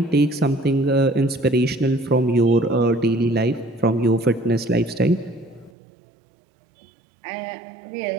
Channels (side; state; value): left; drops out; at 5.7 s